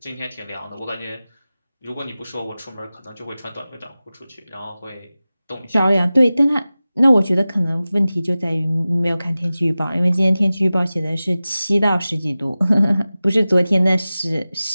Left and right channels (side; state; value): both; inverted; correlation -0.96